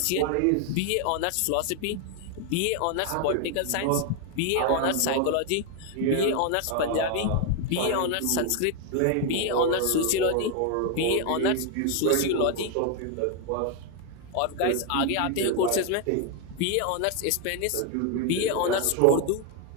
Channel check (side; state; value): both; different; correlation 0.01